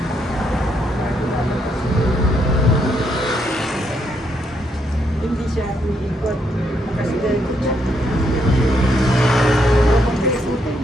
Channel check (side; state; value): both; normal; correlation 0.75